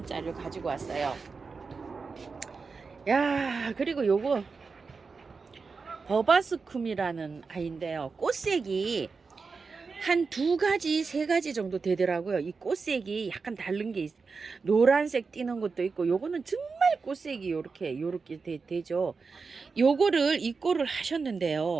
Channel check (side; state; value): left; quieter; 4.7 dB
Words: 가지고 왔어요. 야, 그리고 요거 버바스쿰이라는 아이인데요. 꽃색이 한 2가지, 3가지 정도 되더라고요. 이 꽃색이 약간 다른 게 노란색 띄는 것도 있고, 요거는 정말 꽃색이 요렇게 되죠. 요거를 입고를